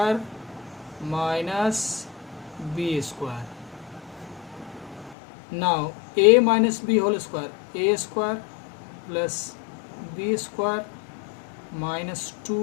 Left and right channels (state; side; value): drops out; right; at 5.2 s